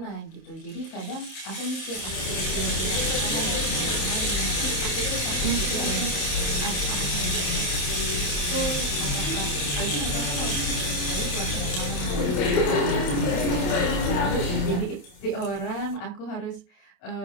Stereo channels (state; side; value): late; right; 27 ms